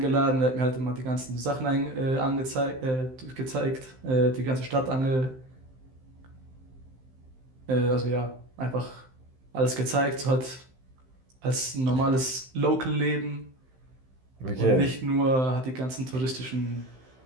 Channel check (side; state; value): left; late; 15 ms